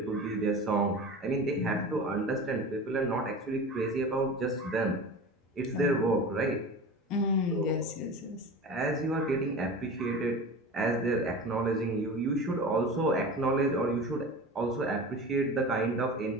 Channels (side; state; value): both; normal; correlation 0.33